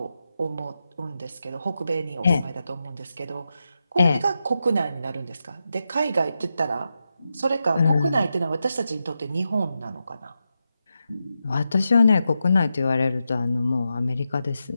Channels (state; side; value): inverted; both; correlation -0.88